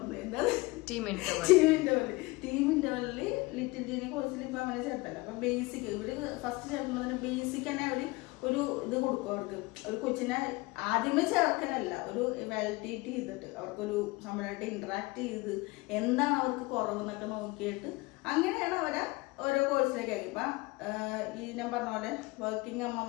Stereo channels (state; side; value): quieter; right; 22.8 dB